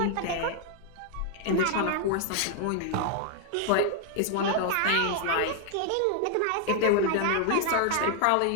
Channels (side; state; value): both; different; correlation 0.00